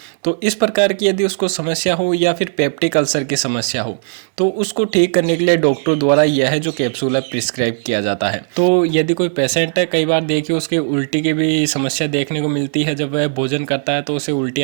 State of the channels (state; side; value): silent; left; digital silence